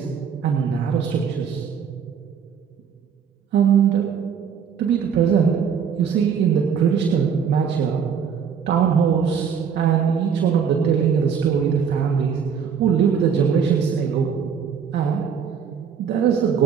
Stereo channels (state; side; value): quieter; left; 7.1 dB